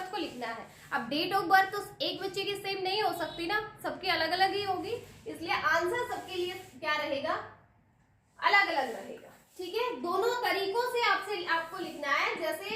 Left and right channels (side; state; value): both; identical; correlation 1.00